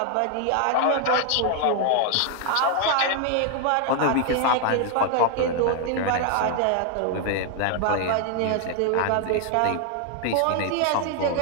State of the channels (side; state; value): both; different; correlation 0.00